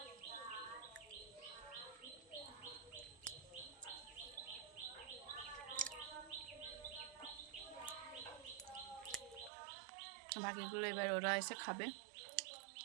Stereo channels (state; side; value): drops out; left; at 9.5 s